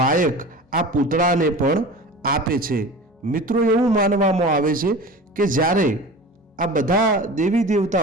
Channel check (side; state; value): both; normal; correlation 0.36